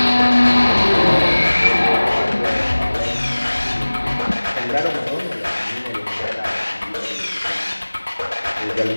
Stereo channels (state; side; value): inverted; both; correlation -1.00